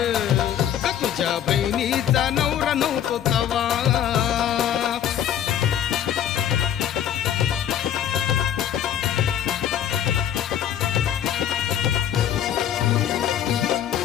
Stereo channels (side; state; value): right; quieter; 10.0 dB